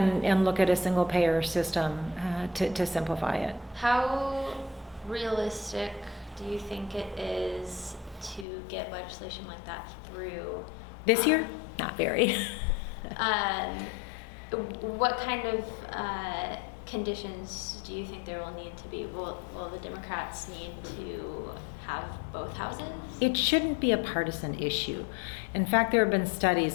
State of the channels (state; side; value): drops out; right; at 8.5 s